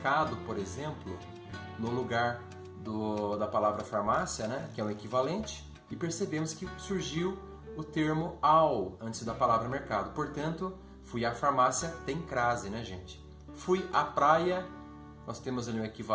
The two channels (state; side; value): identical; both; correlation 1.00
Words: por exemplo, no lugar da palavra farmácia, que é o equivalente, e percebemos que surgiu o termo ao antes da palavra mercado. Portanto, fui à farmácia tem crase, gente? Fui à praia, nós temos ali um